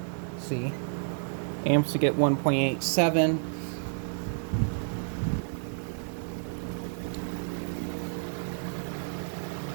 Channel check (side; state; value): left; silent; digital silence